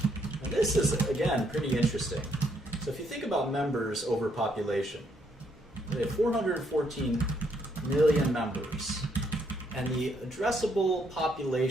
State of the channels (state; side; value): normal; both; correlation 0.72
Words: And this is, again, pretty interesting. So if you think about members over population, they have 414 million members. And the addressable